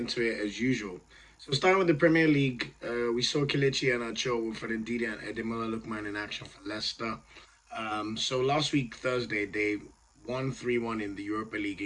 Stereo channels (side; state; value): both; identical; correlation 1.00